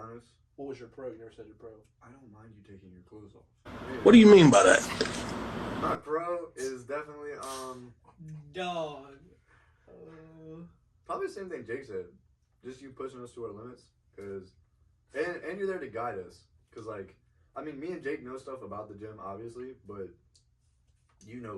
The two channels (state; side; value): identical; both; correlation 1.00